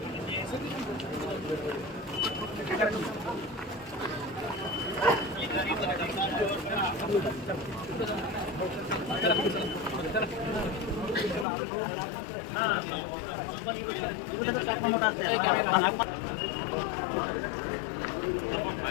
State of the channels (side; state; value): right; drops out; at 11.5 s